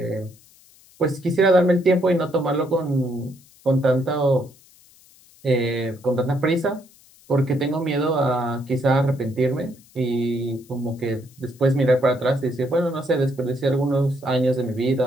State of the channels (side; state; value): left; noise; hiss, 27 dB below the sound